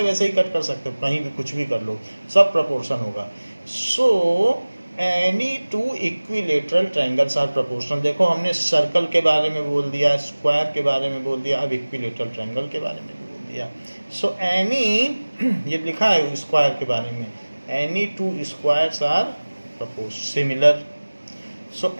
वैसे ही कट कर सकते हो, कहीं भी कुछ भी कर लो, सब प्रपोर्शन होगा। So any two equilateral triangles are proportional. देखो, हमने सर्कल के बारे में बोल दिया, स्क्वायर के बारे में बोल दिया, अब इक्विलेटरल ट्रायंगल के बारे में भी बोल दिया। सो एनी, ये लिखा है स्क्वायर के बारे में, any two squares are similar. So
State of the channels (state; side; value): inverted; both; correlation -1.00